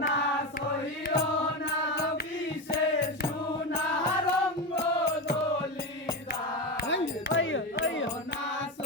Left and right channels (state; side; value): normal; both; correlation 0.17